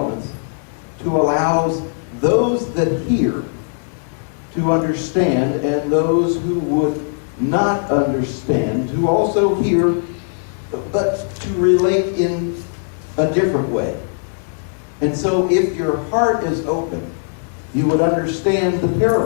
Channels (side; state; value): right; silent; digital silence